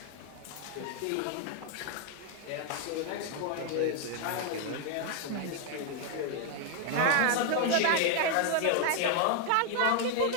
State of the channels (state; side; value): different; both; correlation 0.00